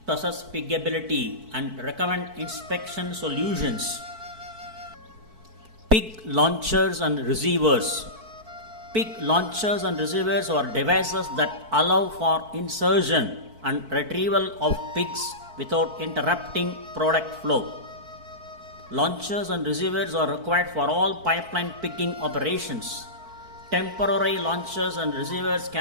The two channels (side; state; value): left; late; 4.5 ms